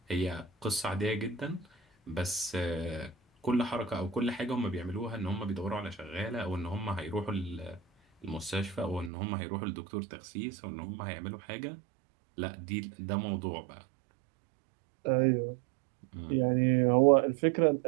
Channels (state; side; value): drops out; left; at 9.1 s